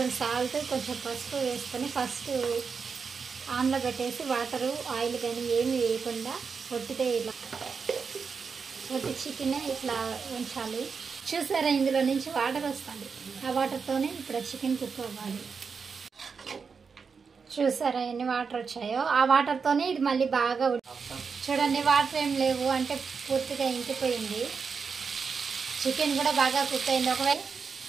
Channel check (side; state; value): left; quieter; 5.5 dB